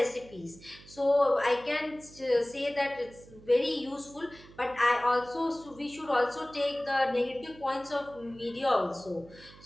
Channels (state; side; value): noise; right; hum, 21 dB below the sound